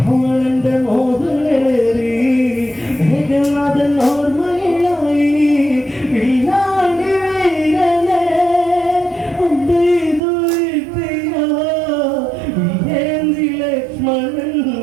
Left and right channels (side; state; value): left; drops out; at 10.2 s